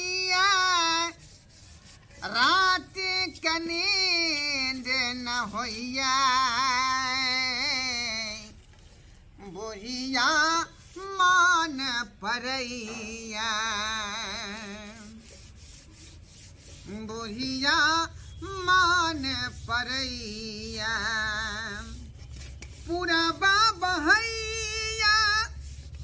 रात के नींद न होइया बुढ़िया मान परैया बुढ़िया मान परैया पूरा बहैया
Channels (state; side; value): identical; both; correlation 1.00